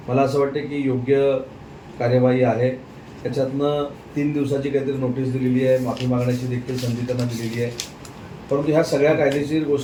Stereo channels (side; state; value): both; identical; correlation 1.00